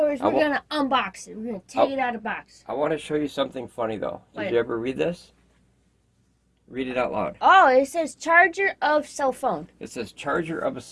We're gonna unbox it. We're gonna take it out of the box. I want to show you something funny though. What? Did you ever read this? Read it out loud. Oh, it says charger of cell phone. It says charger of a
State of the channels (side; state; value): both; identical; correlation 1.00